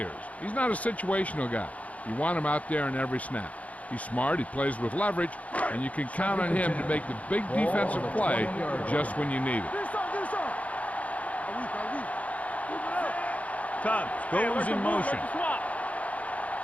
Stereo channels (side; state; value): right; late; 0.068 ms